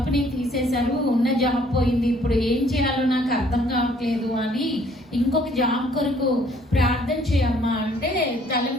తీసేశారు, ఉన్న జాబ్ పోయింది, ఇప్పుడు ఏం చేయాలో నాకు అర్థం కావట్లేదు అని ఇంకొక జాబ్ కొరకు ప్రార్థన చేయమ్మా అంటే తల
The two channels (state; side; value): normal; both; correlation 0.61